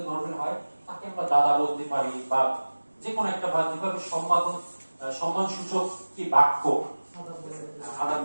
ধর্মের হয় তাকে আমরা দাদা বলতে পারি, বা যে কোনো একটা, বা যেভাবে সম্মান সূচক কি বাক্য আদান,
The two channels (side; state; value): both; inverted; correlation -1.00